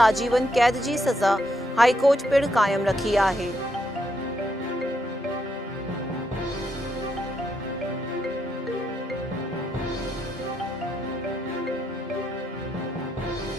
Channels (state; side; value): normal; both; correlation 0.78